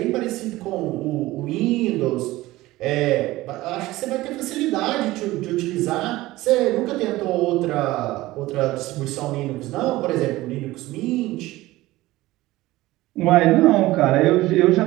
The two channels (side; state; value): left; quieter; 18.0 dB